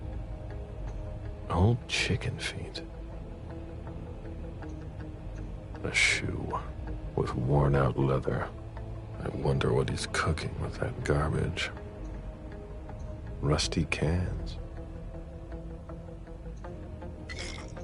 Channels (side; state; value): both; identical; correlation 1.00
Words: Old chicken feet. A shoe with worn-out leather. I wonder what he's cooking with that garbage. Rusty cans.